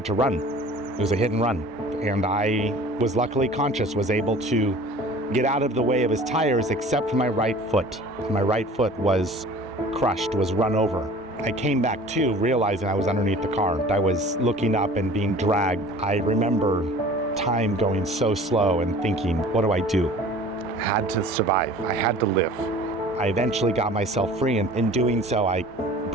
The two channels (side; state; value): both; normal; correlation 0.45